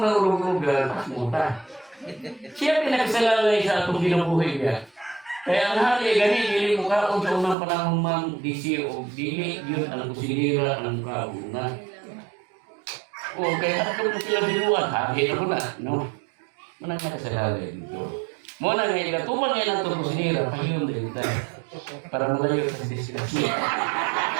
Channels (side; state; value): left; drops out; at 7.6 s